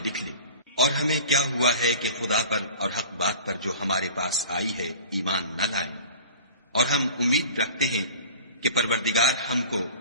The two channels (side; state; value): both; inverted; correlation -0.41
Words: لکھ لے، اور ہمیں کیا ہوا ہے کہ خدا پر اور حق بات پر جو ہمارے پاس آئی ہے ایمان نہ لائیں، اور ہم امید رکھتے ہیں کہ پروردگار ہم کو